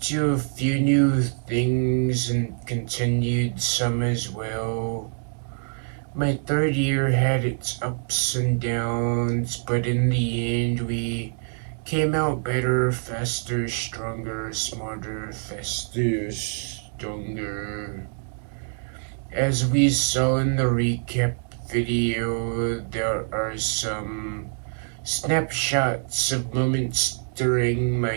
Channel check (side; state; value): left; silent; 62 dB below the other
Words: to a few new things and continued some as well. My third year had its ups and downs, but in the end, we came out better, faster, stronger, smarter, faster, stronger. As we saw in the recap video, there are some snapshots of moments during my